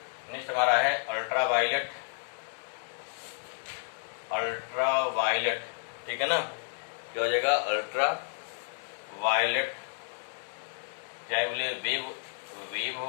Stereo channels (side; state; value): right; silent; digital silence